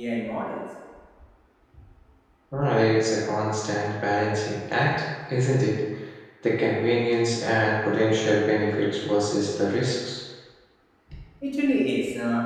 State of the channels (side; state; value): both; identical; correlation 1.00